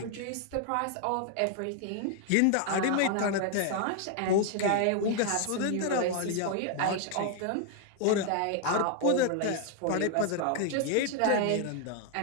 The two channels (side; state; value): both; different; correlation 0.00